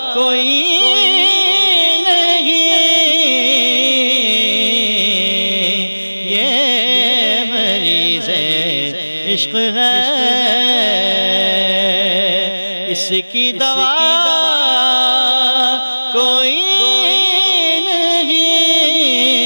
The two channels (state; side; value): inverted; both; correlation -1.00